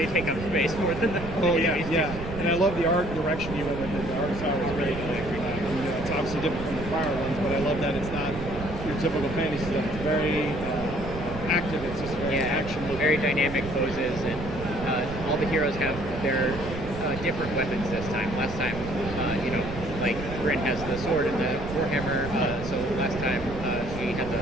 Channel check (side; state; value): right; noise; rumble, 9 dB below the sound